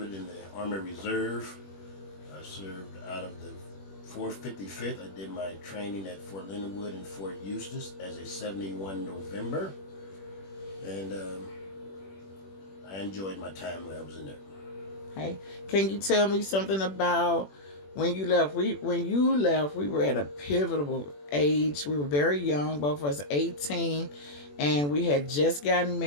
in the Army Reserve. I served out of the 455th. I did my training at Fort Leonard Wood and Fort Eustis as a 71 November. And I enjoyed my time when I was in there. Hey, can you tell me something about when you left? When you left, we were at a pivotal age. We were very young, both of us 18, and we had just gotten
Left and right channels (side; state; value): right; late; 21 ms